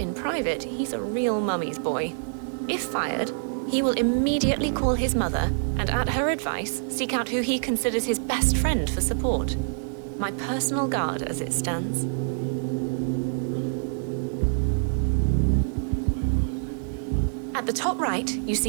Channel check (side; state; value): left; silent; 59 dB below the other